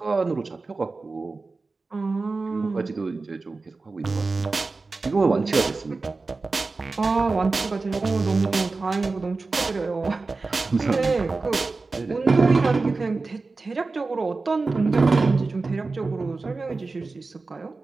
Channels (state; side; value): quieter; left; 3.8 dB